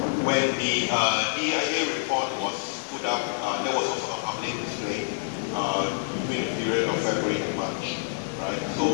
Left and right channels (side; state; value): right; silent; 57 dB below the other